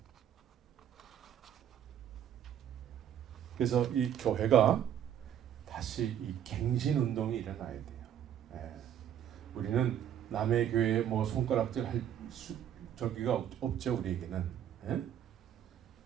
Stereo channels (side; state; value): left; quieter; 10.0 dB